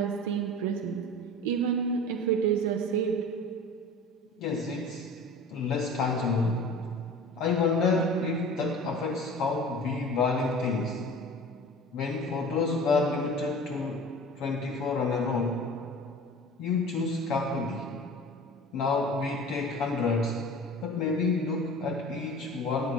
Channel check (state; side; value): normal; both; correlation 0.39